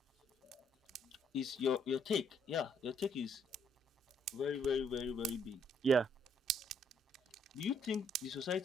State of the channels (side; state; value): both; normal; correlation 0.69